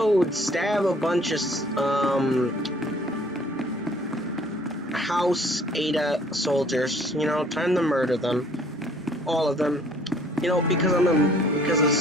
stab a bunch of House Ada soldiers. You know, time to murder them, all of them. You know, because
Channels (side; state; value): both; normal; correlation 0.57